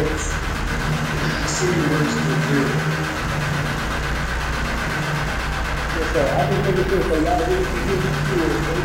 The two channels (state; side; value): identical; both; correlation 1.00